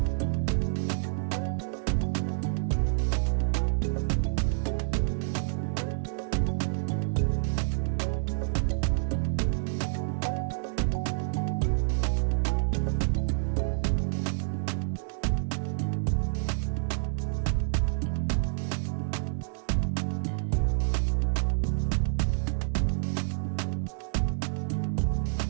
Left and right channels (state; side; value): silent; left; 57 dB below the other